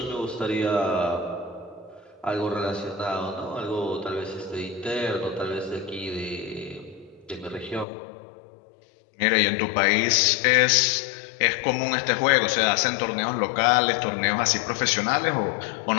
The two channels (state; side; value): drops out; right; at 7.9 s